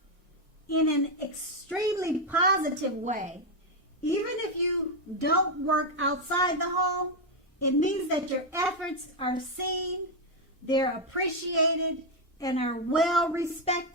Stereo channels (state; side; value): normal; both; correlation 0.03